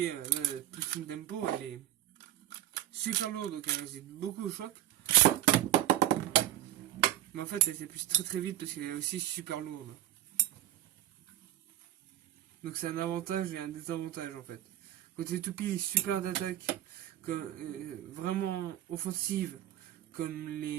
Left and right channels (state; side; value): quieter; left; 13.2 dB